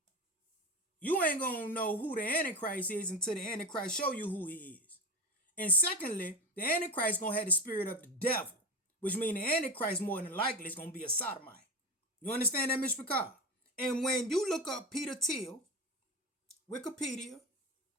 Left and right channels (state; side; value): normal; both; correlation 0.22